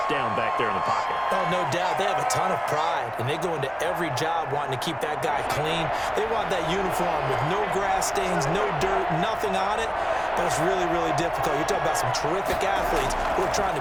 down back there in the pocket. Oh, no doubt. They have a ton of pride, and they go into every job wanting to keep that guy clean. They want that uniform with no grass stains, no dirt, nothing on it, but it's really, really difficult. You're talking about some terrific athletes who are trying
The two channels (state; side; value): identical; both; correlation 1.00